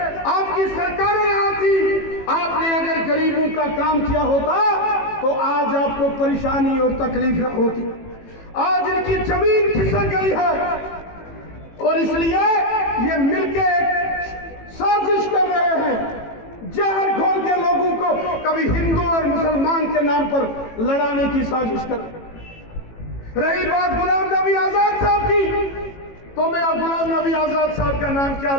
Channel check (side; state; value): right; late; 18 ms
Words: आपकी सरकारें यहाँ थी, आपने अगर गरीबों का काम किया होता तो आज आपको परेशानी और तकलीफ होती। आज इनकी जमीन खिसक गई है और इसलिए ये मिलके साजिश कर रहे हैं, जहर घोल के लोगों को कभी हिंदू और मुसलमान के नाम पर लड़ाने की साजिश कर। रही बात गुलाम नबी आजाद साहब की, तो मैं अब गुलाम नबी आजाद साहब का नाम क्या